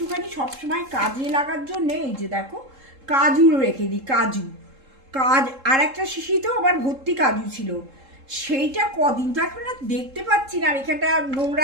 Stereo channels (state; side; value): late; left; 3.7 ms